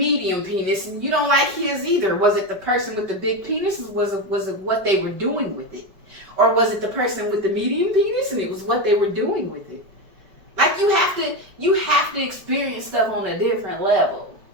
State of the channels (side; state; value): left; late; 5.0 ms